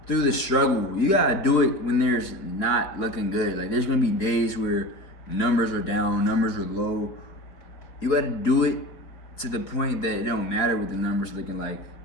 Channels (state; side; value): late; right; 4.8 ms